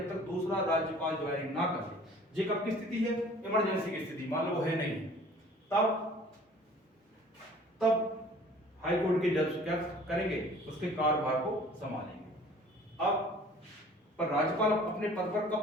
तक दूसरा राज्यपाल ज्वाइन ना कर ले। ये कब की स्थिति है? इमरजेंसी की स्थिति, मान लो वो है नहीं, तब हाई कोर्ट के जज क्या करेंगे? उसके कार्यभार को संभालेंगे। अब पर राज्यपाल अपने पद पर कब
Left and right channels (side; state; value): both; normal; correlation 0.50